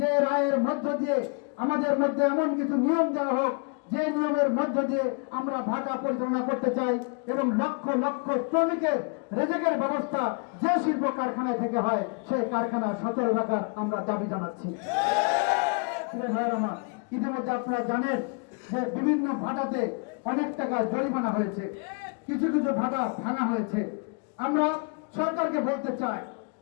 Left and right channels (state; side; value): quieter; right; 35.0 dB